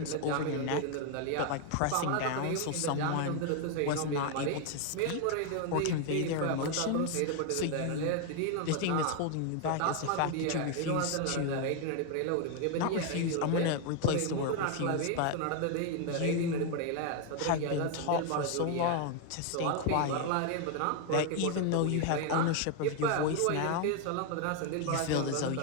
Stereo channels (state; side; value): different; both; correlation 0.01